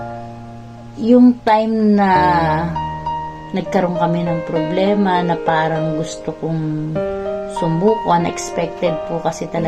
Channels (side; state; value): both; identical; correlation 1.00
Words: yung time na nagkaroon kami ng problema na parang gusto kong sumuko, unexpected po kasi